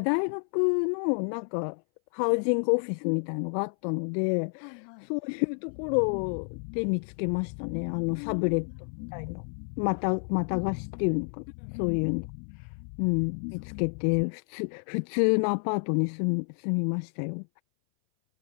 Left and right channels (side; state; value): right; silent; 58 dB below the other